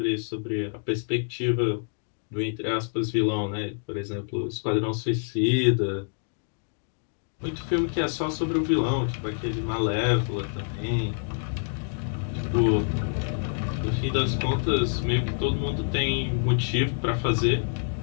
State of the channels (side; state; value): right; silent; digital silence